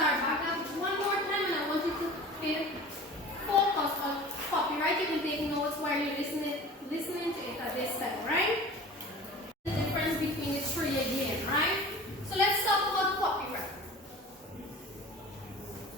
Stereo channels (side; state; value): both; normal; correlation 0.40